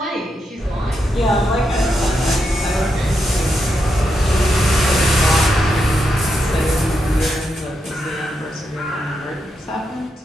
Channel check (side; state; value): both; normal; correlation 0.83